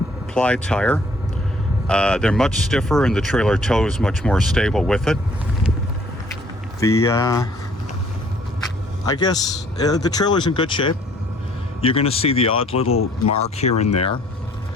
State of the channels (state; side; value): normal; both; correlation 0.59